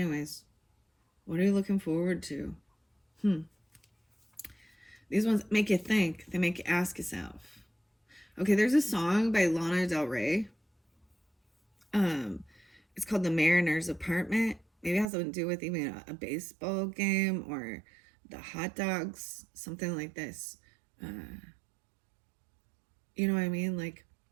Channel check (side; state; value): left; drops out; at 15.1 s